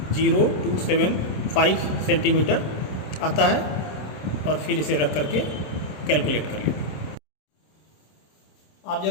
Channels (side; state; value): right; late; 27 ms